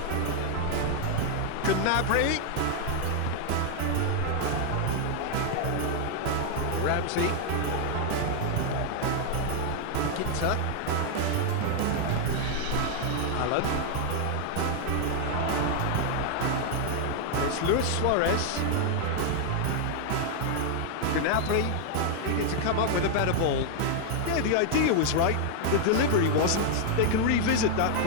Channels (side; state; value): both; different; correlation 0.00